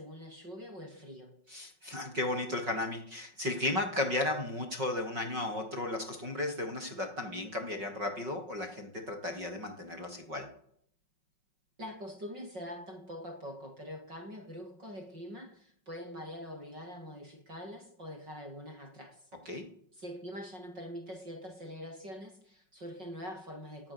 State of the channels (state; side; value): late; left; 5.4 ms